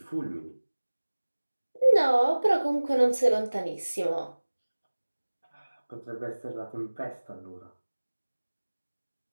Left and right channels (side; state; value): both; inverted; correlation -1.00